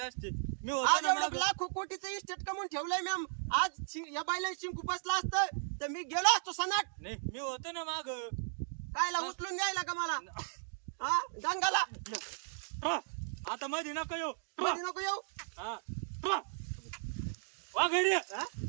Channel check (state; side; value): silent; left; digital silence